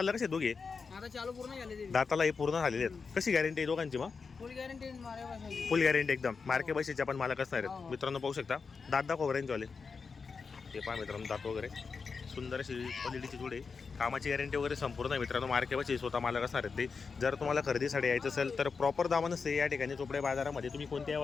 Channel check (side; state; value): right; quieter; 5.1 dB